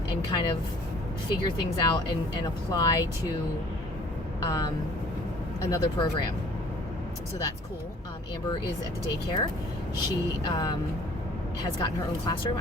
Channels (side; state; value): both; normal; correlation 0.53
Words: kind of figure things out and apply to another program. So that's cool. Amber is at the daycare. She has gotten her own classroom.